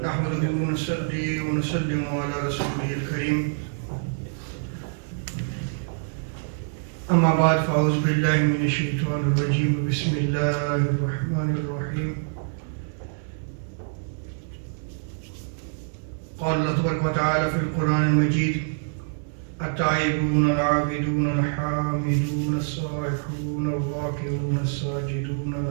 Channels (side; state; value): left; silent; digital silence